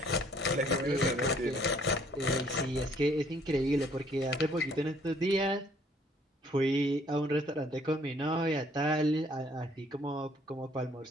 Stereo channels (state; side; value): normal; both; correlation 0.62